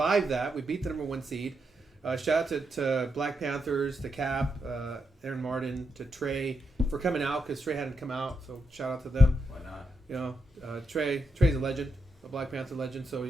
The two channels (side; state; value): both; normal; correlation 0.83